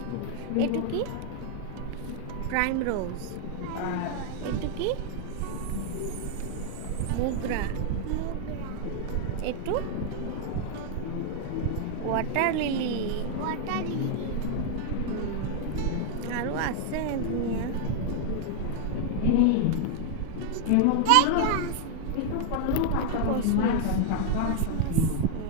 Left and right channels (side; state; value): both; different; correlation 0.00